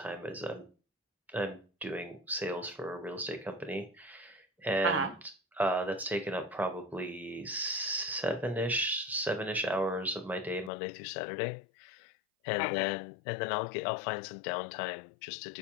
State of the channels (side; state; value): right; drops out; at 10.7 s